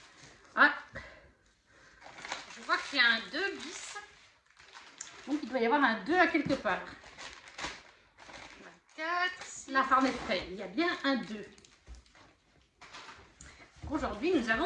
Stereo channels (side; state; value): both; identical; correlation 1.00